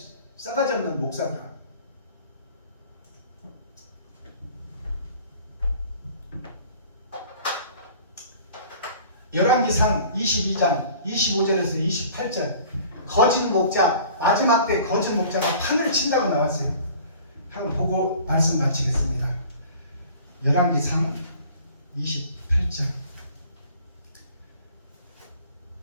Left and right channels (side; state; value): both; inverted; correlation -0.48